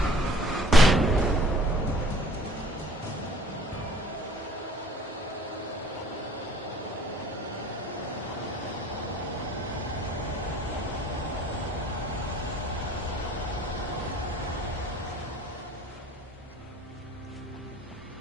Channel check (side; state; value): both; normal; correlation 0.53